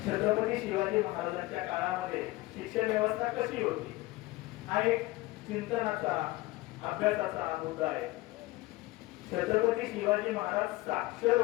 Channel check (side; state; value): right; quieter; 19.6 dB